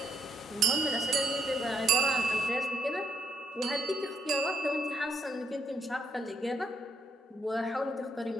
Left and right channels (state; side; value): normal; both; correlation 0.74